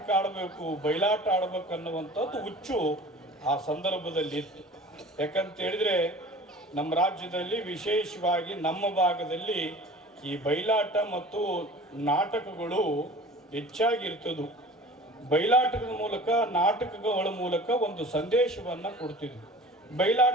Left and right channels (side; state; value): both; normal; correlation 0.42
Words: ಆಡಬೇಕು, ಬಯಲಾಟ ಆಡಬೇಕು ಅನ್ನುವಂಥದ್ದು ಹುಚ್ಚು ಆ ಸಂದರ್ಭದಲ್ಲಿ ಇತ್ತು. ಯಾಕಂತ ಹೇಳಿದ್ರೆ ನಮ್ಮ ರಾಜ್ಯದಲ್ಲಿ ವಿಶೇಷವಾಗಿ ನಮ್ಮ ಭಾಗದಲ್ಲಿ ಈ ಬಯಲಾಟ ಮತ್ತು ನಾಟಕಗಳು ಹೆಚ್ಚಾಗಿರ್ತದ್ದು. ಬಯಲಾಟದ ಮೂಲಕ, ನಾಟಕಗಳ ಮೂಲಕ ಒಂದು ಸಂದೇಶವನ್ನು ಕೊಡ್ತಿದ್ವಿ.